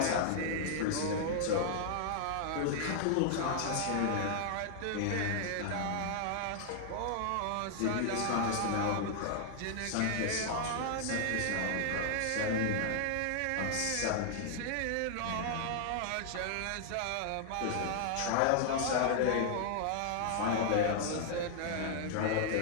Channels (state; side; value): different; both; correlation -0.01